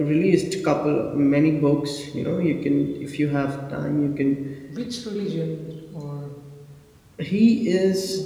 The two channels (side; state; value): both; identical; correlation 1.00